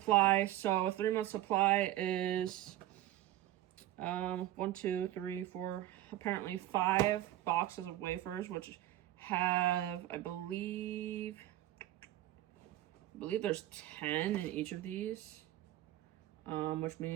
So a 3 month supply is 1, 2, 3, 4, apparently 5 boxes of wafers, which have, I believe there's 10 in each of these, which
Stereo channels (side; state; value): left; quieter; 14.2 dB